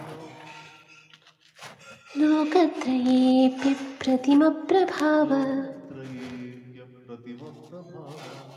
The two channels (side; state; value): both; identical; correlation 1.00